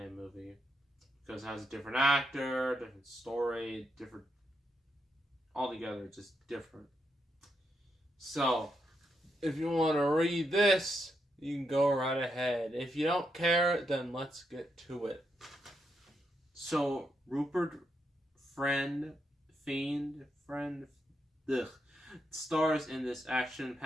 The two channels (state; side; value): normal; both; correlation 0.81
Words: movie, because it has a different actor, different story, different... altogether, just different. So, if you want to read this, you can go right ahead. If you don't care, then let's get to it. So, Rupert Friend stars in this